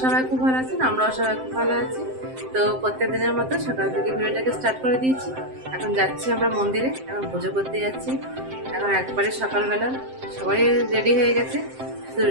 সবাই খুব ভালো আছেন, আমরাও সবাই খুব ভালো আছি। তো প্রত্যেক দিনের মতো সকাল থেকে ভিডিওটাকে স্টার্ট করে দিয়েছি। এখন যাচ্ছি আমরা মন্দিরে, এখন পুজো করতে যাচ্ছি। এখন একবারে সকালবেলা সবাই রেডি হয়ে গেছে, শুধু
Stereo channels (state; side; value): late; left; 7.7 ms